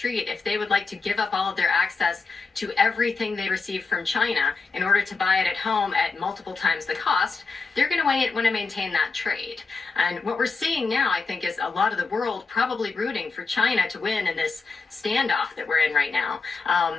if they would like to give up all of their access to everything they receive from China in order to buy it at home at multiple times the cost, they're going to want to maintain that trade. And what we're seeing now, I think, is a lot of the world probably rooting for China to win in this standoff that we're in right now,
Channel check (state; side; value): quieter; right; 4.4 dB